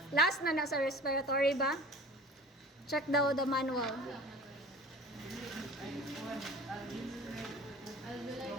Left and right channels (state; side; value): normal; both; correlation 0.43